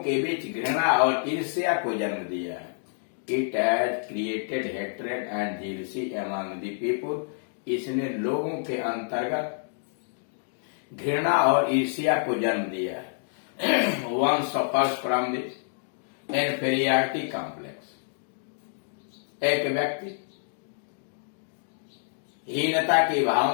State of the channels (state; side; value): silent; right; digital silence